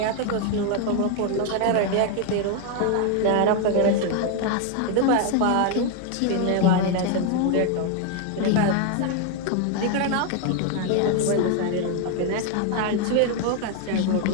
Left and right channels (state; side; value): different; both; correlation 0.01